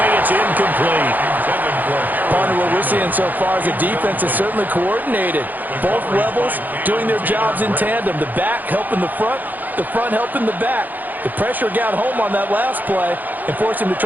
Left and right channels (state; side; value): late; left; 0.084 ms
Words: it's incomplete. Partner, what we're seeing so far is the defense is certainly coordinated. Both levels doing their jobs in tandem. The back helping the front helping the back. The pressure got home on that last play and forced him to